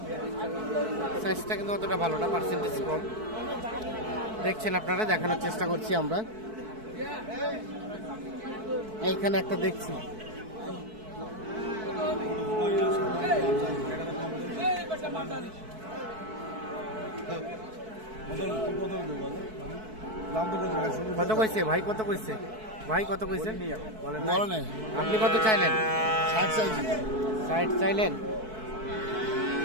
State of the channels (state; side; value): late; left; 4.6 ms